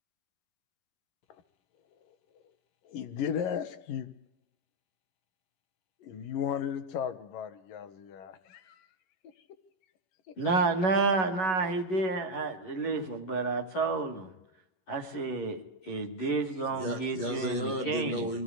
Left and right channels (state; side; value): late; right; 11 ms